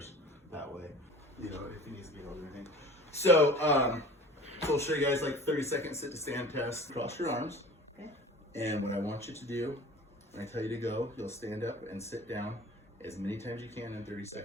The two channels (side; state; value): both; normal; correlation 0.42